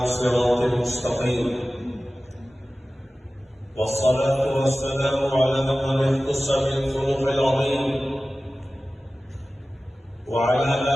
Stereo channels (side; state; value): both; normal; correlation 0.96